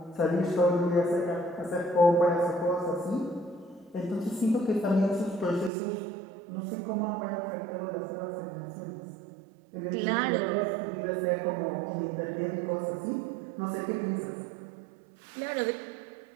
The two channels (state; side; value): drops out; left; at 5.7 s